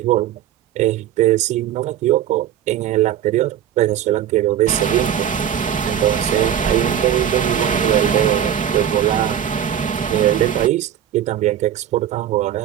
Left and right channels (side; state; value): left; quieter; 10.2 dB